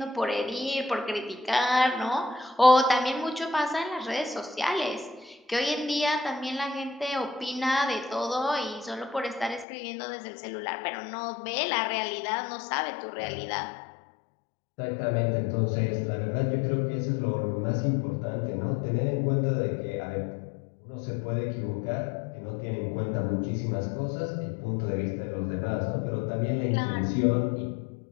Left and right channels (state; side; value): drops out; right; at 9.7 s